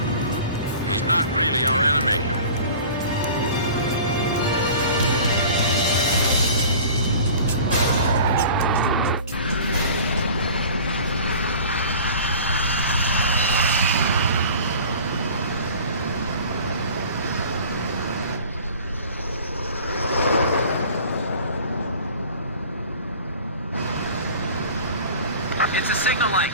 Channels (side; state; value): both; inverted; correlation -0.42